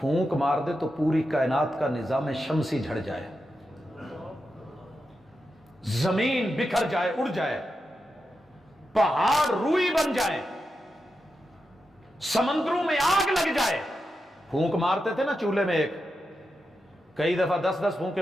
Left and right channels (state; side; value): normal; both; correlation 0.88